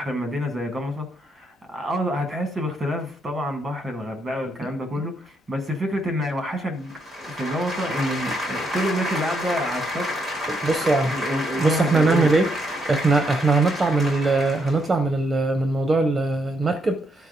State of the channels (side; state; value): both; normal; correlation 0.76